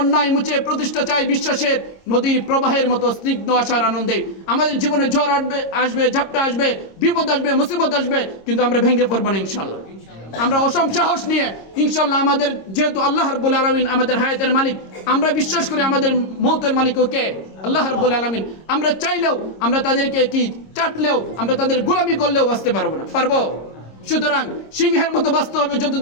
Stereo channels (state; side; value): late; right; 26 ms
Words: মুছে প্রতিষ্ঠা চাই বিশ্বাসের, নদীর প্রবাহের মতো স্নিগ্ধ আশার আনন্দে। আমাদের জীবনে ঝড় আসবে, ঝাপটা আসবে, বিপদ আসবে, মুসিবত আসবে, কিন্তু আমরা ভেঙে পড়বো না ইনশাল্লাহ। আমরা অসম সাহস নিয়ে ইনশাল্লাহ, আমাদের যেহেতু আল্লাহ রাব্বুল আলামিন আমাদের হায়াতের মালিক, আমরা বিশ্বাস করি আমাদের মৌতের মালিকও কে? আল্লাহ রাব্বুল আলামিন। আমরা চাইলেও, আমরা তাদেরকে কি চাটলেও, আমরা তাদের গোলামি করলেও বাঁচতে পারবো না, পারবো? সুতরাং সিংহের মতো বাঁচতে হবে